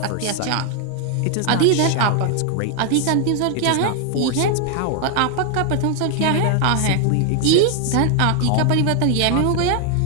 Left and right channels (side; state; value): both; different; correlation 0.00